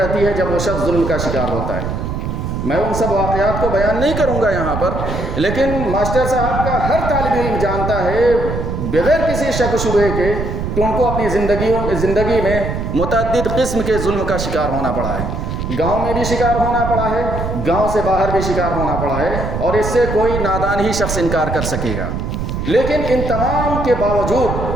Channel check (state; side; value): noise; right; rumble, 3 dB below the sound